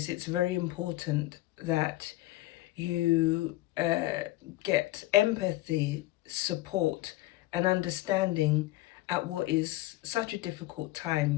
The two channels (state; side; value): quieter; right; 17.6 dB